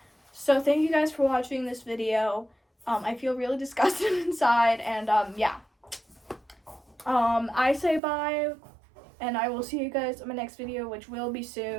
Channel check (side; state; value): left; drops out; at 8.0 s